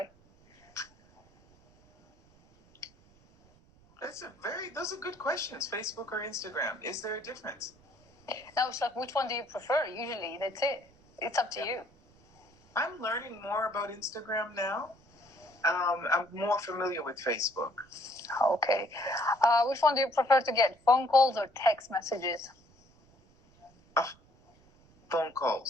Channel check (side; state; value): right; noise; rumble, 29 dB below the sound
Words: Those are good questions. Facebook or Instagram? Is there a difference? No, it's like, which one do you prefer? Usually, that's it. It's up to you. I'm learning more about Instagram now. I'm more familiar with Facebook. Okay. Which one do you prefer to get? Phone calls or text messages? Phone